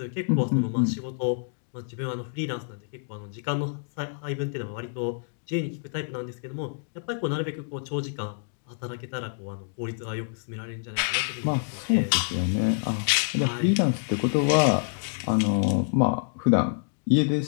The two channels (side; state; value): right; silent; digital silence